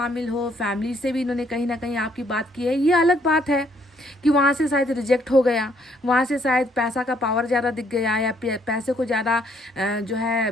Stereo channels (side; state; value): both; normal; correlation 0.67